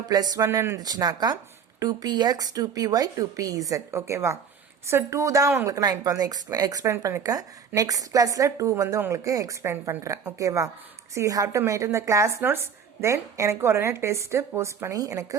+1 இருந்துச்சுனாக்கா 2px 2py 2pz. ஓகேவா? ஸோ 2 தான் உங்களுக்கு நான் இப்போ வந்து எக்ஸ்பிளைன் பண்ணியிருக்கேன். நெக்ஸ்ட் கிளாஸில் 2 வந்து உங்களுக்கு எக்ஸ்பிளைன் பண்ணுறேன். ஓகேவா? So you have to maintain the class notes. Then எனக்கு உடனே டெஸ்ட்டு போஸ்ட் பண்ணி எனக்கு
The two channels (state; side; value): quieter; left; 7.0 dB